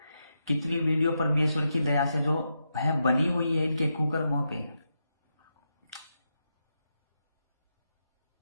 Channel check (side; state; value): both; inverted; correlation -0.85